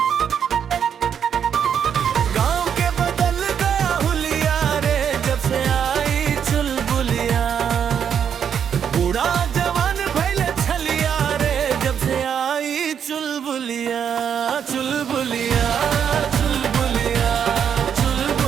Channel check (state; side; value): quieter; left; 8.1 dB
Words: गांव के बदल गया हुलिया रे जब से आई चुलबुलिया। बूढ़ा जवान भइले छलिया रे जब से आई चुलबुलिया। चुलबुलिया चुलबुलिया